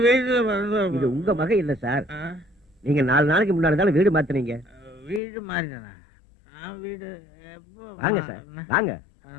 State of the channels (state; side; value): drops out; right; at 5.2 s